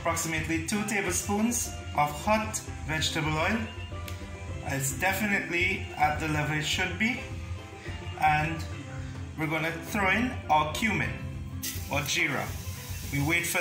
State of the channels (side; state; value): both; identical; correlation 1.00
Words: 2 tablespoons of hot vegetable oil. It's definitely at the level it should be, and we're going to throw in our cumin or jeera. We wait for